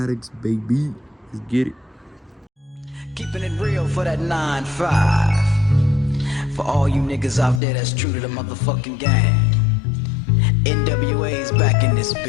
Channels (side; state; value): right; drops out; at 7.6 s